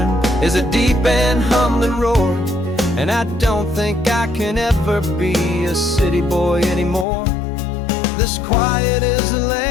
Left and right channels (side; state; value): right; drops out; at 7.1 s